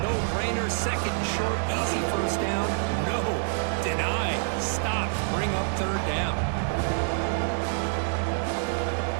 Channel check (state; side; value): silent; left; 60 dB below the other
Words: Second and short, easy first down. No, deny, stop, bring up third down.